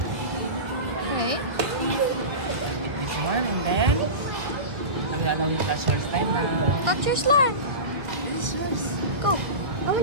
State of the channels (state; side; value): late; left; 1.4 ms